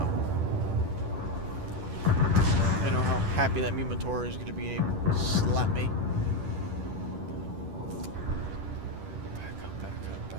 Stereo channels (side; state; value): left; late; 10 ms